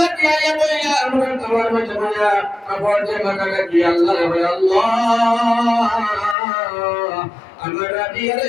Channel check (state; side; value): drops out; right; at 6.4 s